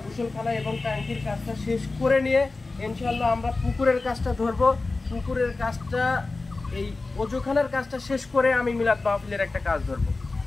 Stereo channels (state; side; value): quieter; right; 3.5 dB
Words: গোসলখানা এবং ট্যাঙ্কির কাজটা শেষ করে নিয়ে ইনশাল্লাহ আমরা পুকুরের কাজটা ধরবো। পুকুরের কাজটা, এই অজুখানার কাজটা শেষ করে আমি মিলাদ মাহফিলের একটা কাজ ধরবো।